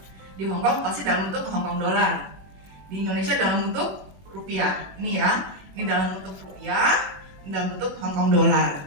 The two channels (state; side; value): late; left; 21 ms